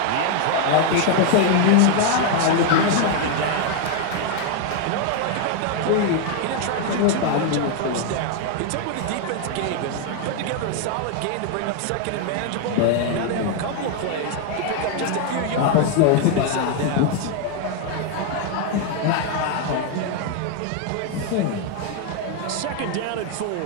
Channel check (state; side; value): different; both; correlation 0.01